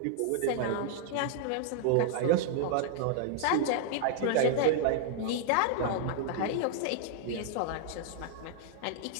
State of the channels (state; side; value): different; both; correlation -0.01